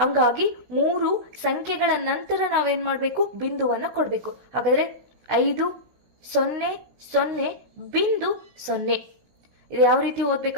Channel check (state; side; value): late; left; 16 ms